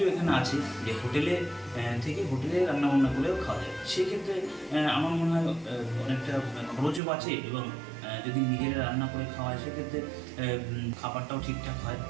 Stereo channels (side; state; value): left; drops out; at 7.0 s